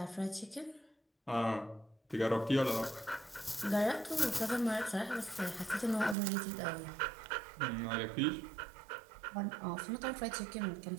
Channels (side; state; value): left; drops out; at 6.2 s